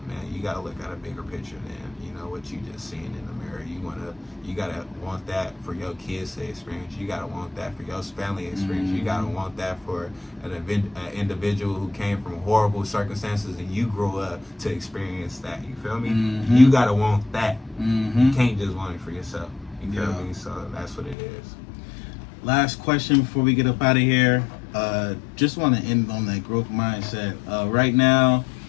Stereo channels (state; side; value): drops out; right; at 21.2 s